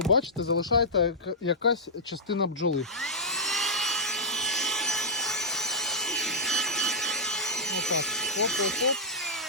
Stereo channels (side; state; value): both; normal; correlation -0.09